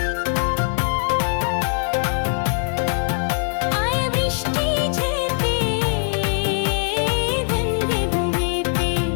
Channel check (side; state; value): right; silent; digital silence